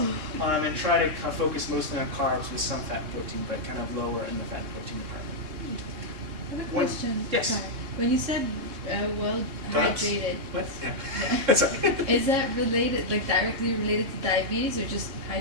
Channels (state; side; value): late; left; 3.7 ms